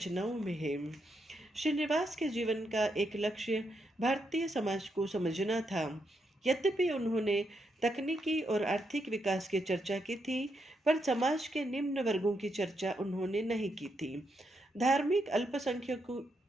में है। श्रीनिवास के जीवन का एक लक्ष्य भारतीय समाज को समझना था। यद्यपि उन्होंने तकनीकी और आर्थिक विकास की चर्चा की थी, पर समाज के निम्न वर्गों की चर्चा उन्होंने नहीं की थी। धार्मिक अल्पसंख्यकों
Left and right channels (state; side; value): normal; both; correlation 0.81